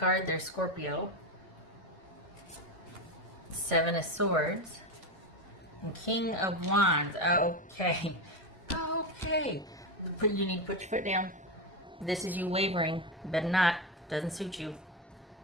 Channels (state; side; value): normal; both; correlation 0.14